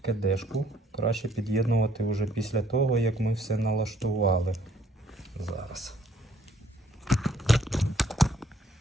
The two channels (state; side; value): normal; both; correlation 0.63